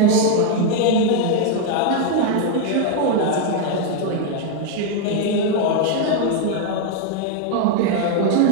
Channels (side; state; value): both; different; correlation 0.00